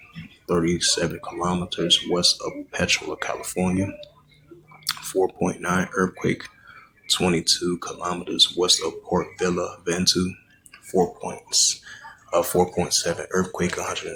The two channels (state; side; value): identical; both; correlation 1.00